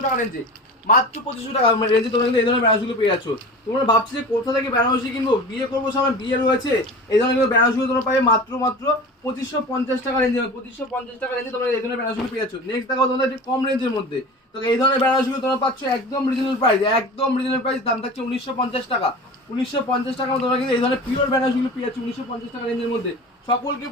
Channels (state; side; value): normal; both; correlation 0.35